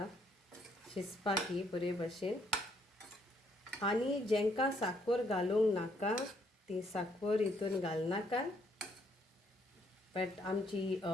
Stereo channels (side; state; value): both; normal; correlation 0.69